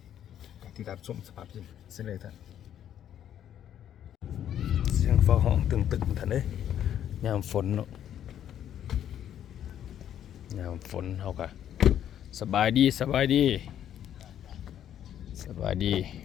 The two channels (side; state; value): right; quieter; 10.3 dB